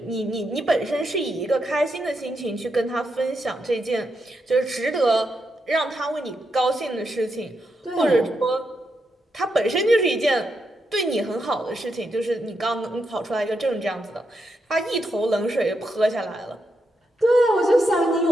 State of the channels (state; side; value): normal; both; correlation 0.83